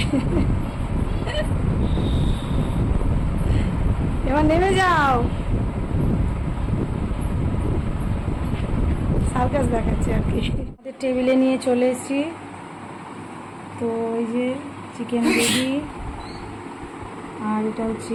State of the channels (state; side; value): identical; both; correlation 1.00